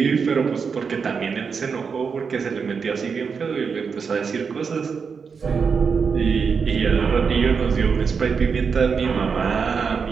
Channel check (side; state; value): left; quieter; 5.8 dB